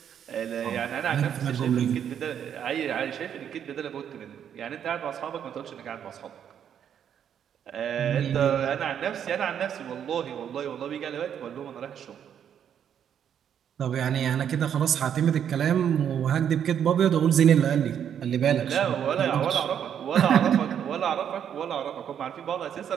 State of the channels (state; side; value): quieter; left; 8.9 dB